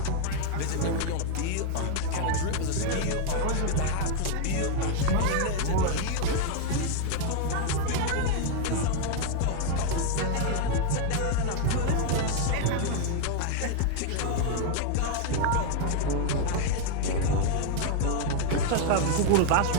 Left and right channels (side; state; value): both; different; correlation 0.00